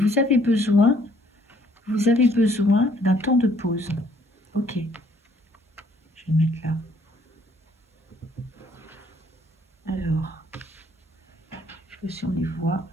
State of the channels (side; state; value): both; normal; correlation 0.63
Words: avez besoin d'un temps de pause. Ok. Je vais le mettre là. Alors, je sais pas si on les voit.